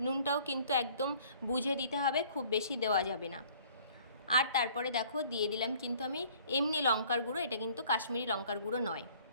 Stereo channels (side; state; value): both; inverted; correlation -0.55